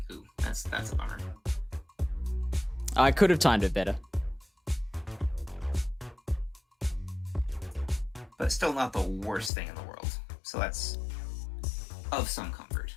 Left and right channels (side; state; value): right; drops out; at 9.5 s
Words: that's a bummer. I could have timed it better. But it's still not the worst thing in the world. So that's of some comfort.